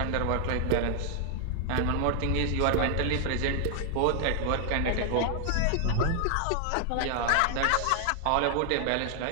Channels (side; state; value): both; different; correlation 0.00